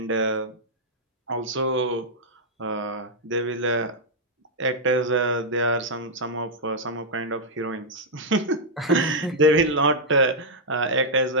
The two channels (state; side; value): normal; both; correlation -0.05